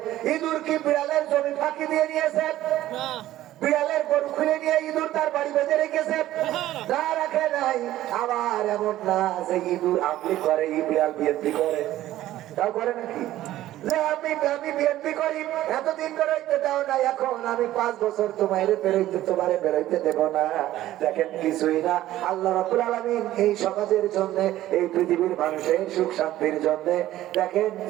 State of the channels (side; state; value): left; quieter; 14.3 dB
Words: ইঁদুর কি বিড়ালের জমি ফাঁকি দিয়ে নিয়েছে? বিড়ালের গরু খুলে নিয়ে ইঁদুর তার বাড়ি বেঁধে রেখেছে? তা রাখে নাই। আবার এমন না যে ইঁদুর আমলি করে, বিড়াল বিএনপি করে, তাও করে নাকি? যে আমি বিএনপি করি, এতদিন বেরোইতে দাও না, এখন আমি 5 বছর তোমারে বেরোইতে দেব না। দেখেন, কিছুই না। আল্লাহ রাব্বুল আলামিন এই সমাজের জন্য, এই পৃথিবীর মানুষের সুখ শান্তির জন্য, দেখেন